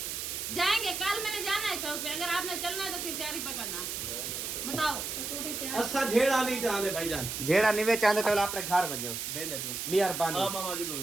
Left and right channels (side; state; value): right; noise; hiss, 4 dB below the sound